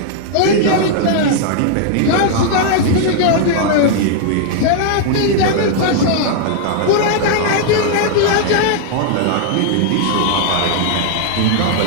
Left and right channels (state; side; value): different; both; correlation 0.00